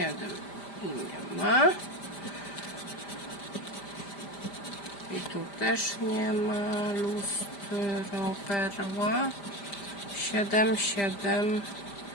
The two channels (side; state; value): right; late; 5.0 ms